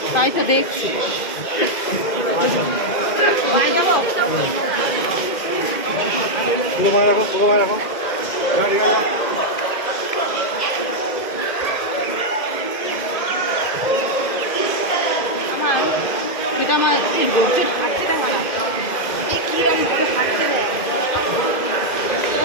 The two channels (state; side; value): late; right; 2.0 ms